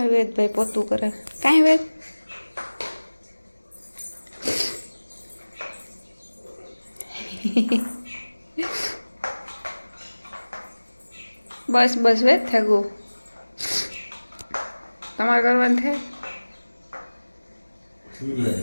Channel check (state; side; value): inverted; both; correlation -1.00